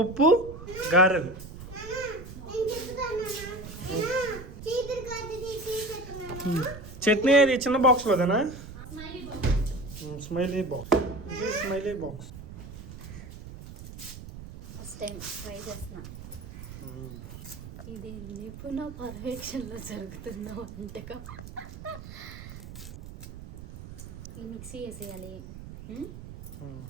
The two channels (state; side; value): noise; right; rumble, 13 dB below the sound